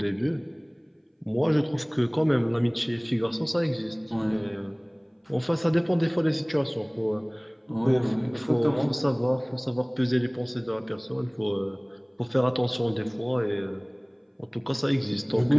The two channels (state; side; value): identical; both; correlation 1.00